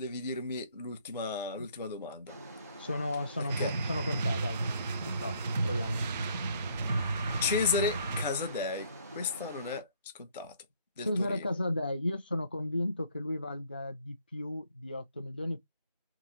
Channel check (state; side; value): inverted; both; correlation -0.63